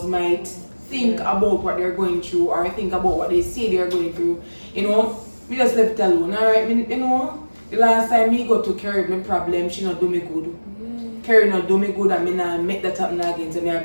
might think about what they're going through or think about what they say they're going through. You know, we just left it alone, alright? You know, the last time me go to Carrie my problem, she not do me good. Carrie not do me good and me not make that happen again. So me I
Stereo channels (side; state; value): both; inverted; correlation -1.00